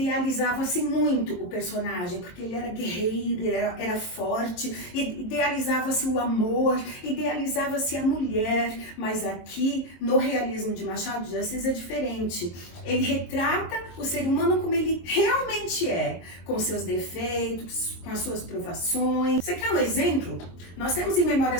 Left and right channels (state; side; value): late; right; 22 ms